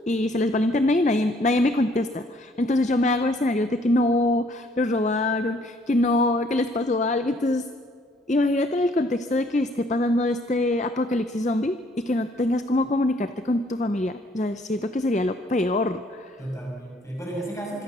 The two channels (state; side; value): normal; both; correlation 0.63